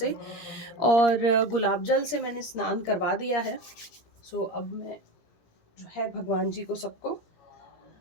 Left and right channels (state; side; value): late; right; 18 ms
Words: और गुलाब जल से मैंने स्नान करवा दिया है। सो अब मैं जो है भगवान जी को सबको